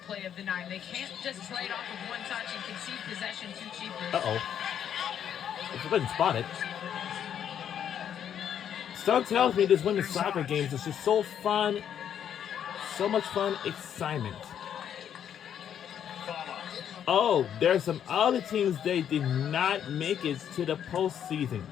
play of the 9. They can't just play it off with one touch and concede possession too cheaply. Uh-oh. If I didn't spot it. Stuff tells me this women's soccer games is just so fun. So much fun, excitement. Oh, there's some other teams they did not make it to the postseason,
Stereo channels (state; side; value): quieter; right; 9.2 dB